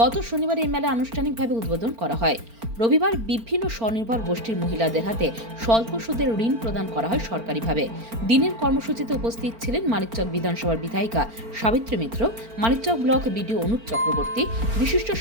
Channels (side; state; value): left; late; 4.4 ms